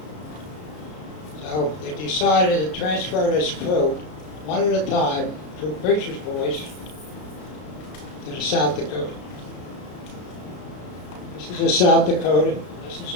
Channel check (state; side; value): late; right; 33 ms